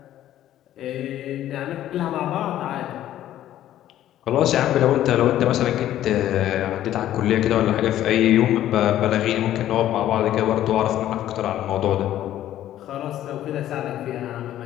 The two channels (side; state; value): right; quieter; 12.6 dB